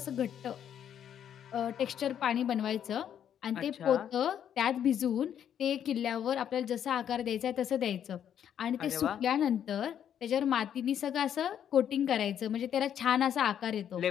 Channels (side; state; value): right; quieter; 9.4 dB